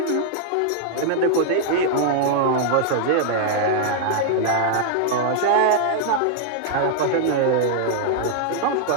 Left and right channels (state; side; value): different; both; correlation -0.01